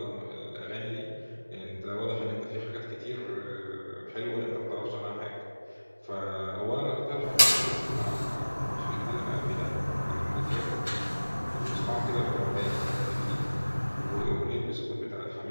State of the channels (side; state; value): both; inverted; correlation -1.00